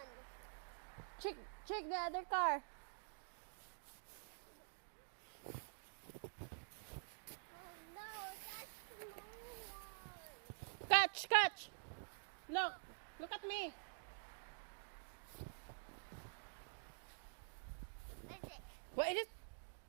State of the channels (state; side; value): silent; left; digital silence